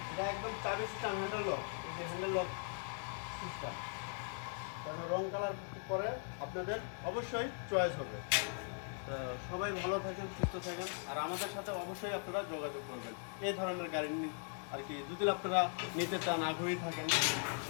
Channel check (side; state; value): right; silent; 51 dB below the other